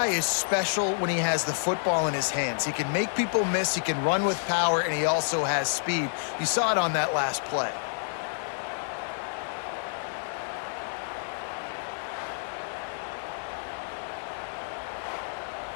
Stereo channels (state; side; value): silent; right; 55 dB below the other